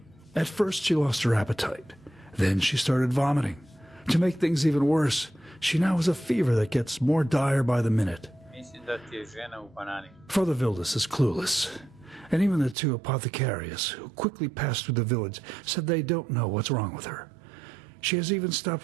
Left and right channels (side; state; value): left; drops out; at 12.8 s